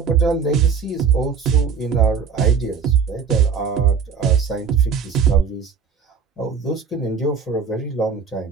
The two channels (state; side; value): quieter; left; 6.2 dB